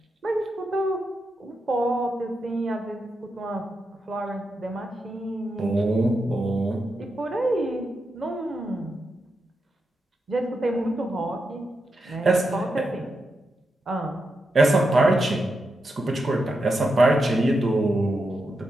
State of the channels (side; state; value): both; normal; correlation 0.86